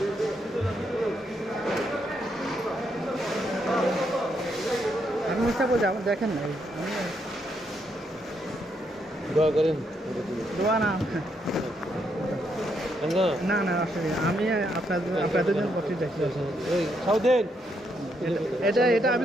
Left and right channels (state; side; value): normal; both; correlation 0.77